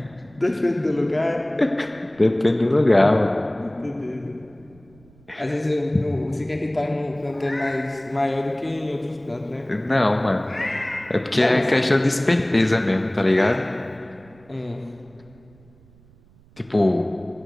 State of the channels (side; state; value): right; noise; rumble, 28 dB below the sound